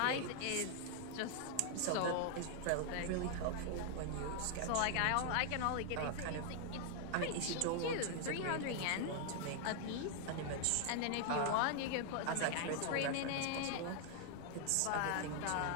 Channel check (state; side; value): different; both; correlation 0.00